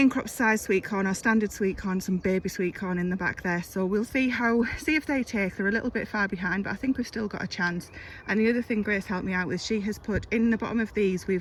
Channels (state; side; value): identical; both; correlation 1.00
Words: crop size sweet corn or standard sweet corn, some baby sweet corn in the back there, so we'll see if they take. They're a little bit far behind, but I think we've still got a chance. And the other thing Grace helped me out with, she has put in the bottom of these,